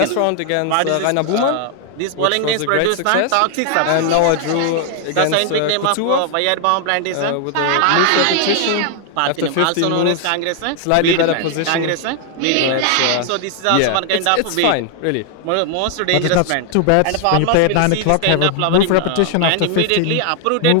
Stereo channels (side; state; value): both; different; correlation 0.00